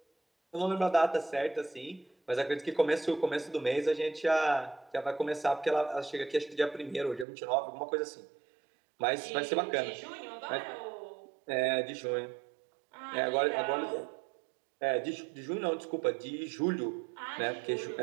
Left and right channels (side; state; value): left; drops out; at 7.2 s